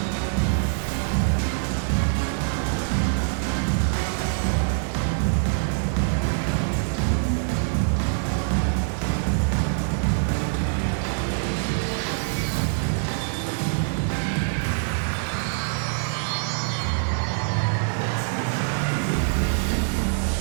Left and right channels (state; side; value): silent; left; digital silence